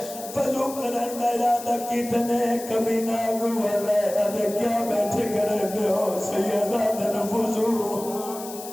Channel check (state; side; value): noise; left; hiss, 13 dB below the sound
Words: فضو کرن دا ارادہ کتنے کمینہ گوالے ادھے کیا بیٹھے کرے دے ہو سیدہ دن فضو